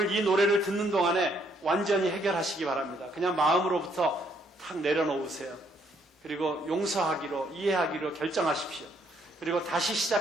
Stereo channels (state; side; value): normal; both; correlation 0.69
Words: 이 노래를 듣는 동안에 완전히 해결하시기 바랍니다. 그냥 마음으로부터 탁 내려놓으세요. 그리고 용서하기로, 이해하기로 결정하십시오. 그리고 다시